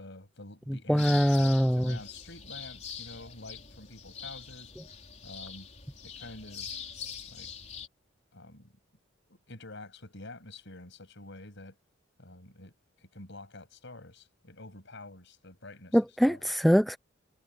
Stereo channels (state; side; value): normal; both; correlation 0.95